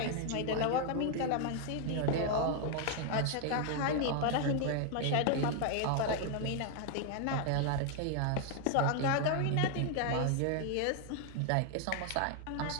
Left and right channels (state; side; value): different; both; correlation 0.00